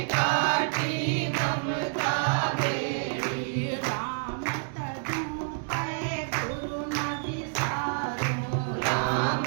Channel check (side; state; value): left; silent; 59 dB below the other